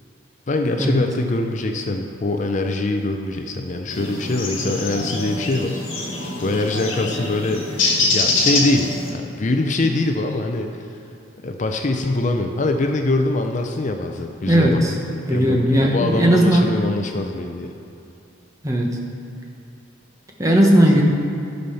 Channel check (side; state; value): both; normal; correlation 0.66